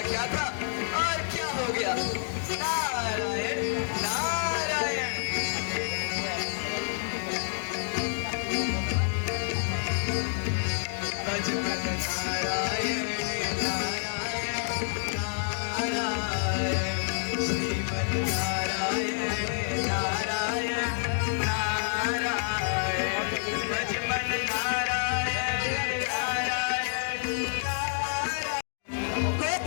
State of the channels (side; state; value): right; silent; digital silence